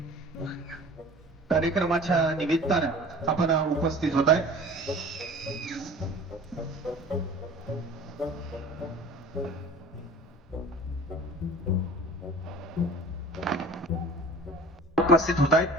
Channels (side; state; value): both; normal; correlation 0.42